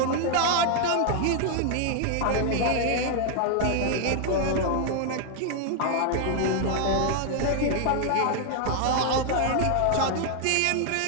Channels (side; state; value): both; different; correlation 0.00